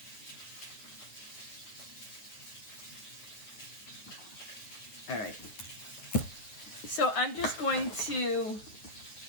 All right. So I'm just going to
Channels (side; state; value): right; late; 9.5 ms